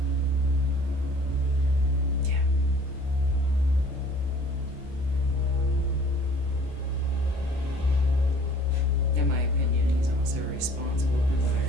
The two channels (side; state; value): both; normal; correlation 0.53